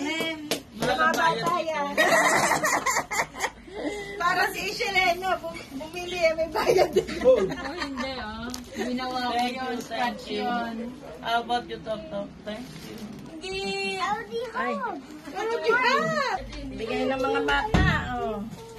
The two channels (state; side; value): identical; both; correlation 1.00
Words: Mga bata yan. Para si Isheleno, bumili, may bayad din. Oh, hindi Ginawa ko yun, scratch yun. How about you, Tok? Thank you. Ay. Pero di ba? Bigay ng mga bata, oh.